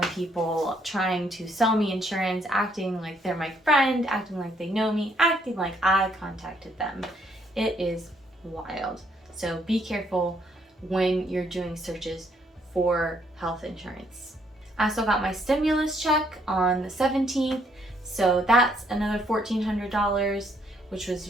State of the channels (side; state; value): both; normal; correlation 0.69